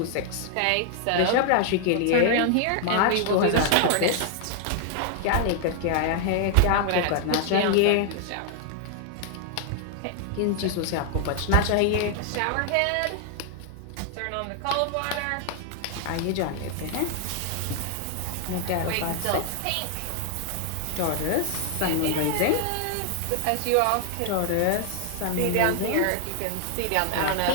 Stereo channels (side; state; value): both; different; correlation 0.00